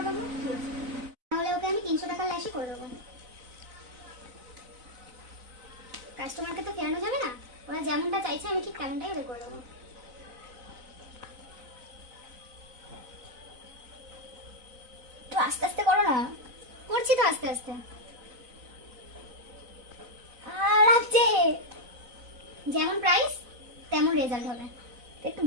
দেবো। ঠিক আছে, তাহলে ওকে আমি 300 টাকা ল্যাশই করে দেবো। কাস্টমারকে তো ফেরানো যাবে না, ওরা যেমনটা চাইছে আমি ঠিক তেমনটাই ওদের করে দেবো। তো আস্তে আস্তে করো না। করছি তো আস্তে আস্তে। লাগছে, যেমন প্রাইস তেমন রেজাল্ট হবে। একটু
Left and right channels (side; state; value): left; late; 4.0 ms